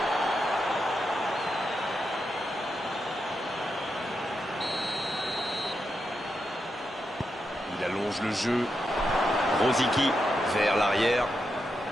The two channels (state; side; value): normal; both; correlation 0.85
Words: Il allonge le jeu. Rosicky vers l'arrière.